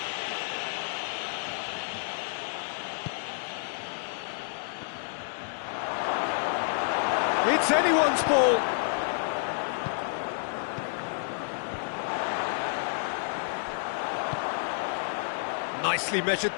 It's anyone's ball. Nicely measured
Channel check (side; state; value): right; silent; digital silence